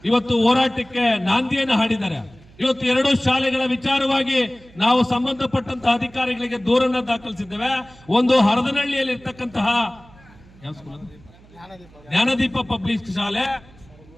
ಇವತ್ತು ಹೋರಾಟಕ್ಕೆ ನಾಂದಿಯನ್ನು ಹಾಡಿದ್ದಾರೆ. ಇವತ್ತು 2 ಶಾಲೆಗಳ ವಿಚಾರವಾಗಿ ನಾವು ಸಂಬಂಧಪಟ್ಟಂತಹ ಅಧಿಕಾರಿಗಳಿಗೆ ದೂರನ್ನ ದಾಖಲಿಸಿದ್ದೇವೆ. ಒಂದು ಹರದನಹಳ್ಳಿಯಲ್ಲಿ ಇರ್ತಕ್ಕಂತಹ ಜ್ಞಾನದೀಪ ಪಬ್ಲಿಕ್ ಶಾಲೆ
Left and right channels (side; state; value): right; noise; hum, 25 dB below the sound